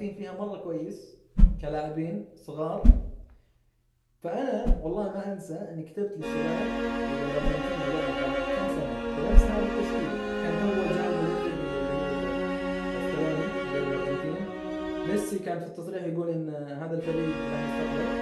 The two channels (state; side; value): identical; both; correlation 1.00